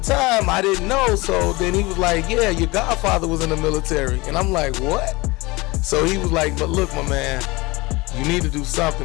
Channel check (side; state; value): right; quieter; 23.0 dB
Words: I didn't know. So then he was like, yeah, your godfather was in the military. And I'm like, what? So he was like, but look, my man, you need to do